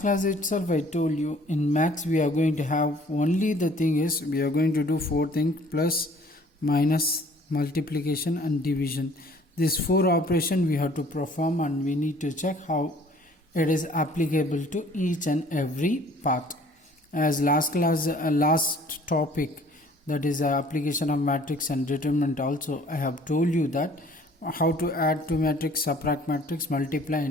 class itself I told you in max we are going to have only the thing is we are going to do four things: plus, minus, multiplication and division. These four operations we have to perform, and we need to check how it is applicable to each and every part. As last class last topic, that is application of matrix and determinant, also I have told you that how to add to matrix, subtract matrix, multiply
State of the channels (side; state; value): both; normal; correlation 0.55